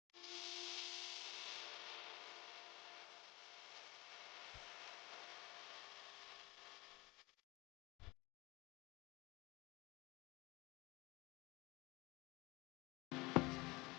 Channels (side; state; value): right; quieter; 22.9 dB